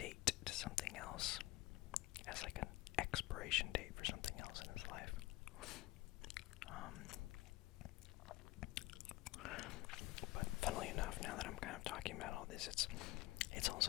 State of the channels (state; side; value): quieter; right; 19.0 dB